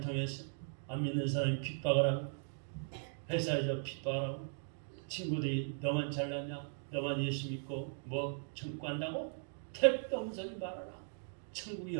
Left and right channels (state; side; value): silent; left; digital silence